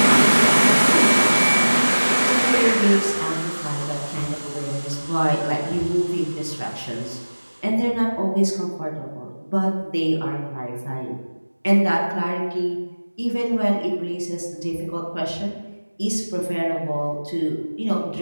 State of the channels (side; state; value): both; inverted; correlation -1.00